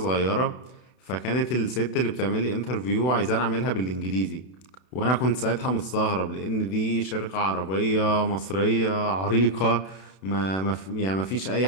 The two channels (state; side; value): late; right; 32 ms